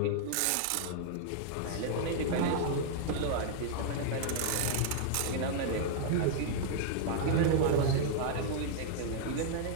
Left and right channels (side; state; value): both; different; correlation -0.01